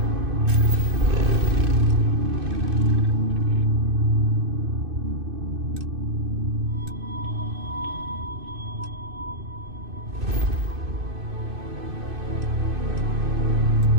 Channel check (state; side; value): late; left; 2.6 ms